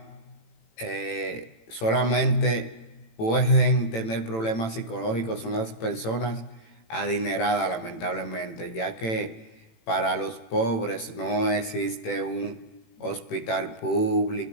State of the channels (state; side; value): late; right; 18 ms